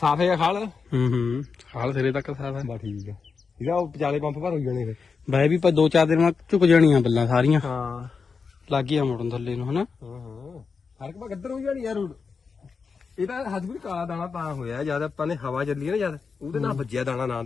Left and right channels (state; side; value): quieter; right; 5.2 dB